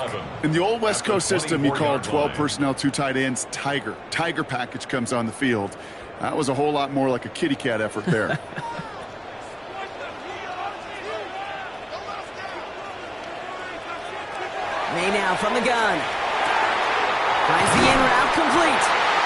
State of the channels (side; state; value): both; identical; correlation 1.00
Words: In the old West Coast system, you call 12 personnel, 2 tight ends, Tiger. Tiger package comes on the field. That was a whole lot more like a kitty cat effort there. May now from the gun. Finds the in route complete.